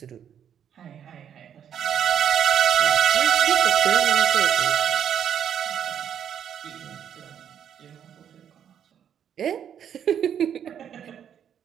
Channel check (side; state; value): left; quieter; 8.9 dB